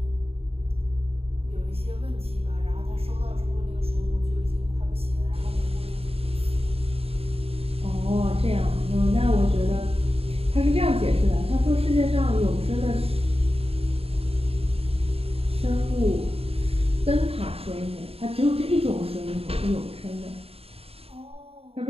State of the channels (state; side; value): late; left; 0.28 ms